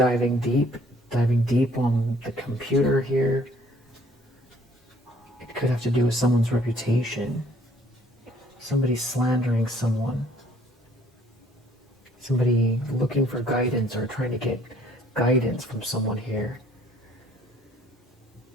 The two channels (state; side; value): normal; both; correlation 0.59